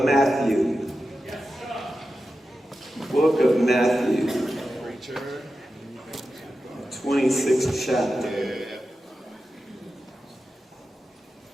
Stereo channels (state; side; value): normal; both; correlation 0.92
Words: Matthew. Book of Matthew. 26th chapter.